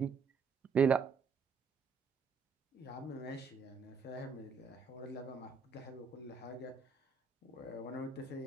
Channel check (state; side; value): quieter; left; 5.4 dB